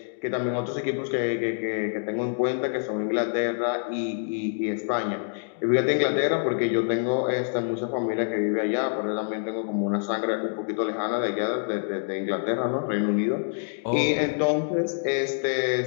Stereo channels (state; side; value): silent; right; digital silence